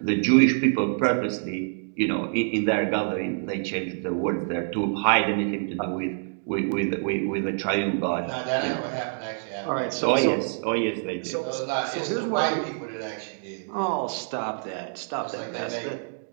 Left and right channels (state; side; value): silent; left; digital silence